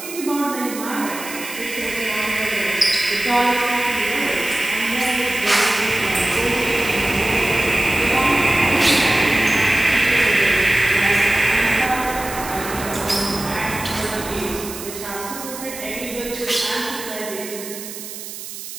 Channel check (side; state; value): right; noise; hiss, 11 dB below the sound